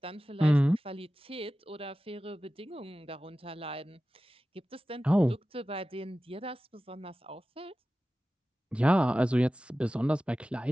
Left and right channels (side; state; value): both; normal; correlation 0.95